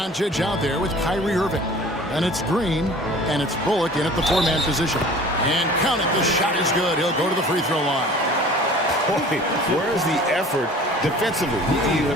out there with Kyrie Irving. And it's Green, and it's Bullock in at the 4-man position. And count it, the shot is good. He'll go to the free throw line. Boy, where's the effort defensively? You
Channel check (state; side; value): normal; both; correlation 0.45